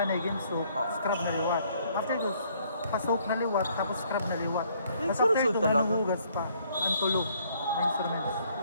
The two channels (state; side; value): inverted; both; correlation -0.65